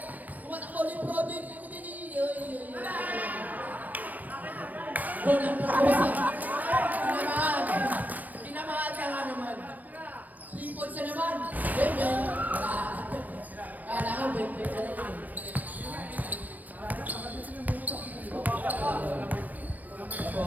Kumatakbo LeBron James. Gol ng Barbosa. Tinamahan. Tinamahan ka nga naman. 3 points na naman. Bebe. Kala ko, bebe ka na yun.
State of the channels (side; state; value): left; late; 0.082 ms